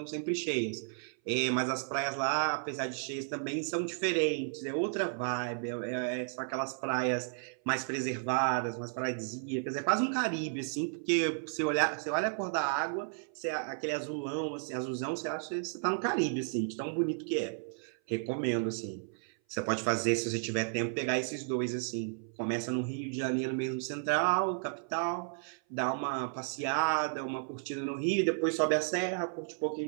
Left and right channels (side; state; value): left; silent; 56 dB below the other